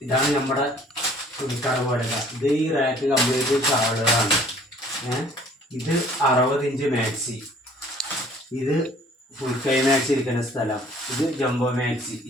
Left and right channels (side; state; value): both; normal; correlation 0.55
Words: ഇതാണ് നമ്മുടെ തുണിക്കട പോലെ. ഇത് ഈ റാക്ക് കംപ്ലീറ്റ് ഷാളുകളാണ്. ഇത് 60 ഇഞ്ച് മാക്സി, ഇത് ഫുൾ കൈ മാക്സി ഇരിക്കുന്ന സ്ഥലം, ഇത് ജംബോ മാക്സി. ഈ